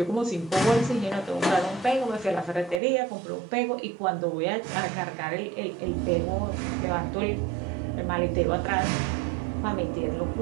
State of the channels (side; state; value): left; drops out; at 2.8 s